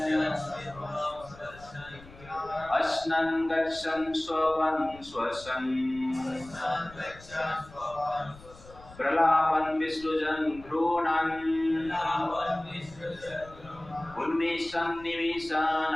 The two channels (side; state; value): left; noise; rumble, 20 dB below the sound